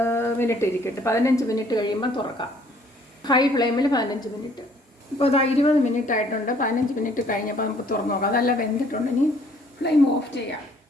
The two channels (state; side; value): normal; both; correlation 0.60